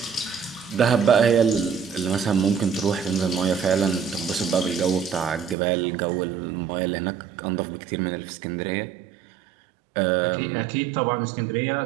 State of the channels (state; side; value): drops out; left; at 5.6 s